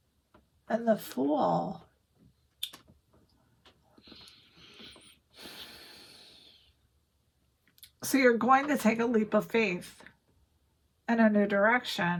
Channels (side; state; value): both; identical; correlation 1.00